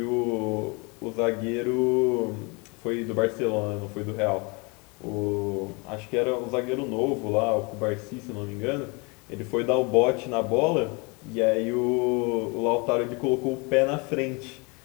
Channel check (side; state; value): right; quieter; 29.7 dB